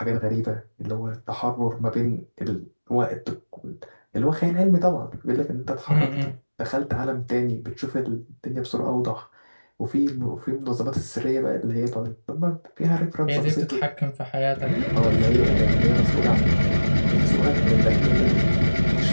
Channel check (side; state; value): both; inverted; correlation -1.00